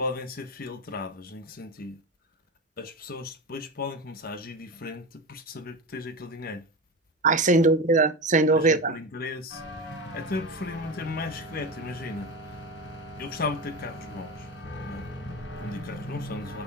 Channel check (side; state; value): both; normal; correlation 0.23